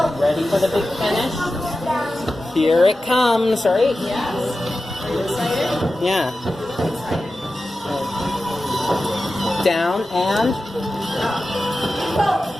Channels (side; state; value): both; normal; correlation 0.93